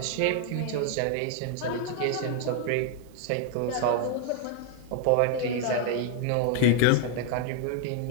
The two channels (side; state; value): both; different; correlation 0.00